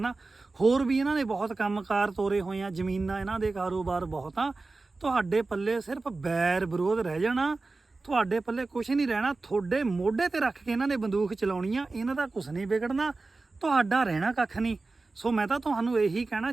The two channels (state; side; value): quieter; left; 3.6 dB